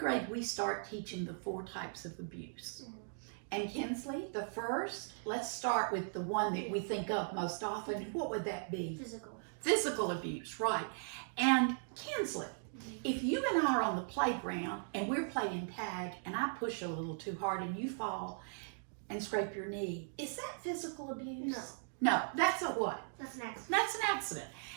we start teaching the 4 types of abuse. And Kinsley, the first, let's start with the one that we think of most often. What would that be? Physical. Physical abuse, right. And Kinsley, if you and I are on the playground and we're playing tag and I push a little too hard and you fall and scrape your knee, is that physical abuse? No. No, that's a what? That's an accident. That's an accident.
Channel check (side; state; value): left; silent; digital silence